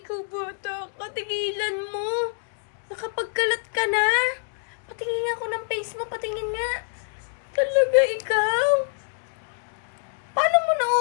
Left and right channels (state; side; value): silent; right; digital silence